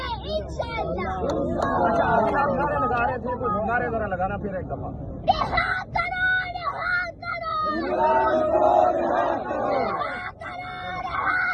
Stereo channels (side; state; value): both; identical; correlation 1.00